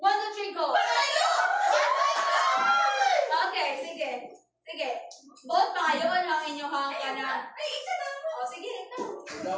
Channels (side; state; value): both; identical; correlation 1.00